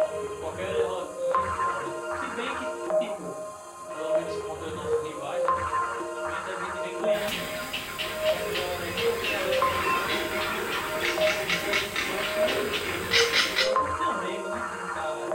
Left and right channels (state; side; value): identical; both; correlation 1.00